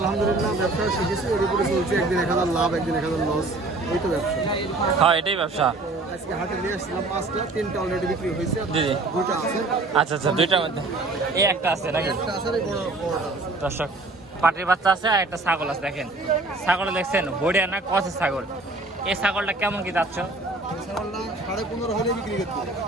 ব্যবসা শিখেছি, এর উপরে চলছে। একদিন 1000 লাভ, একদিন 1000 লস, এই তো ব্যবসা। হ্যাঁ এটাই ব্যবসা। আজকে হাটে নিয়ে আসছিলাম 5টা, 3টা অলরেডি বিক্রি হয়েছে, জি জি, 2টা আছে। আচ্ছা আচ্ছা, দুইটার মধ্যে এই একটা আছে নাকি? একটা আছে, এই বড়টা আছে। দর্শক পাটির বাচ্চা আছে আর একটা ছাগল আছে। দেখেন ছাগল দেখছেন, বড়িয়া না কষের ছাগল। এই ছাগলটা কেমন কি যাচ্ছ? এই ছাগলটা 15.5 হলে বিক্রি করতে হবে।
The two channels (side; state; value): left; quieter; 3.2 dB